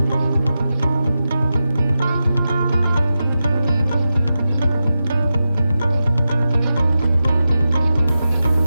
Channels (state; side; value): inverted; both; correlation -0.91